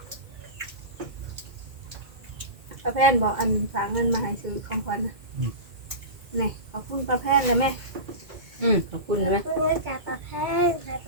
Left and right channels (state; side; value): late; left; 2.1 ms